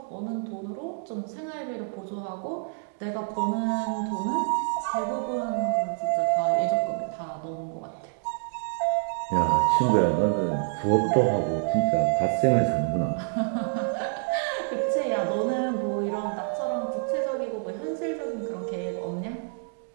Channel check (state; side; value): silent; left; 60 dB below the other